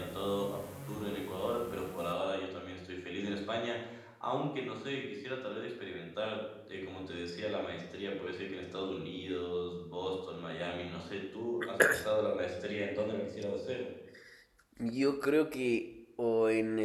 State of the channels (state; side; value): identical; both; correlation 1.00